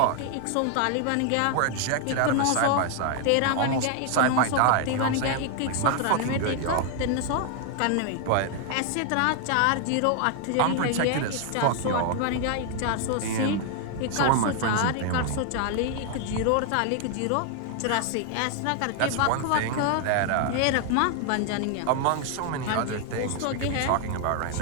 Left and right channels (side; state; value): both; different; correlation 0.00